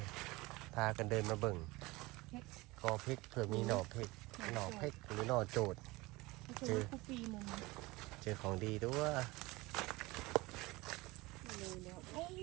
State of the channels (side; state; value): left; quieter; 21.9 dB